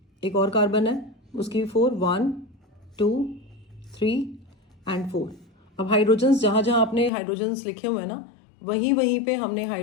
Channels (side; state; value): right; drops out; at 7.1 s